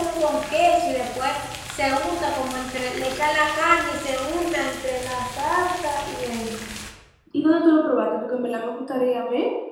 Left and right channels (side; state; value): both; identical; correlation 1.00